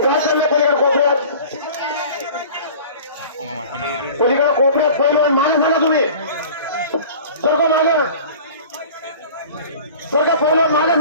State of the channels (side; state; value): both; inverted; correlation -0.42